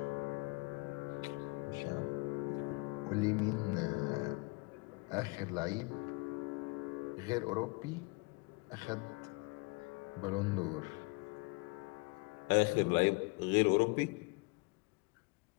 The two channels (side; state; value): right; quieter; 27.8 dB